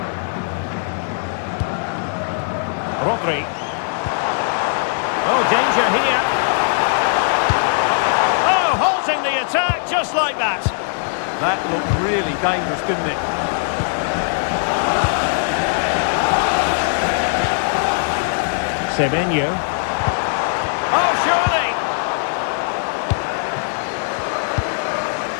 Rodri. Oh, danger here. Oh, halting the attack just like that. That looked really dangerous, didn't it? Semenyo. Oh, surely!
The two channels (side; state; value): right; silent; 59 dB below the other